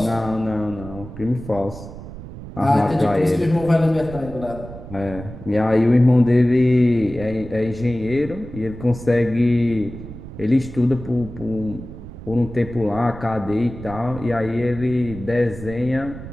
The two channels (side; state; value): right; noise; rumble, 13 dB below the sound